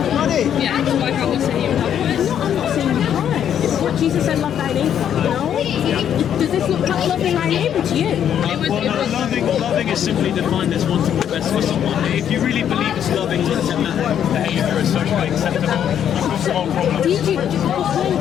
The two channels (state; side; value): quieter; right; 9.4 dB